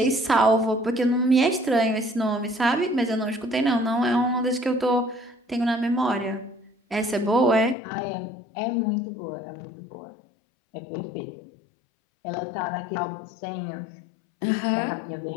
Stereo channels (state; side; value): drops out; right; at 7.8 s